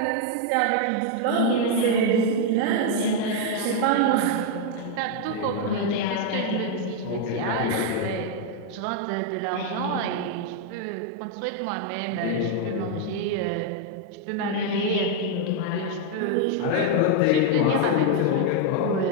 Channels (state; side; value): different; both; correlation 0.01